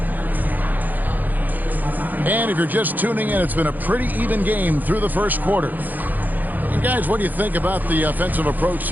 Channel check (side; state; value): left; late; 0.084 ms